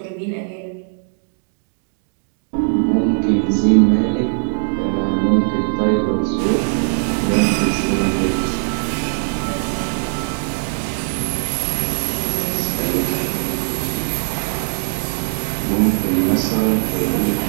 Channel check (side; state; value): left; silent; digital silence